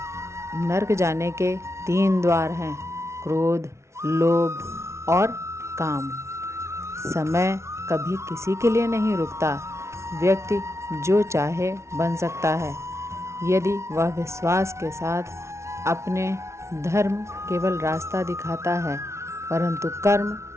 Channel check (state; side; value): late; left; 0.13 ms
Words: नर्क जाने के 3 द्वार हैं: क्रोध, लोभ और काम। समय कभी किसी के लिए नहीं रुकता। व्यक्ति जो चाहे बन सकता है यदि वह विश्वास के साथ अपने धर्म केवल रास्ता दिखाता है, परंतु कर्म